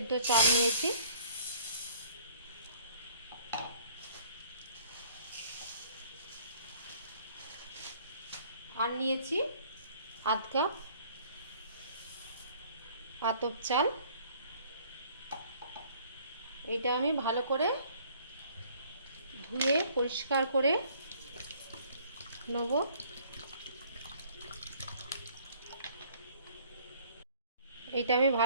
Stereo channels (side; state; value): both; inverted; correlation -0.57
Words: চাল নিয়েছি। আর নিয়েছি 1/2 কাপ আতপ চাল। এটা আমি ভালো করে ধুয়ে পরিষ্কার করে নেব। এটা আমি